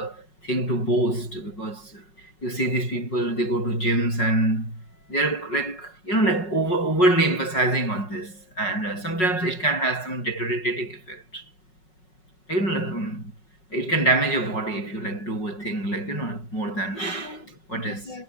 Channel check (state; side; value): late; right; 5.4 ms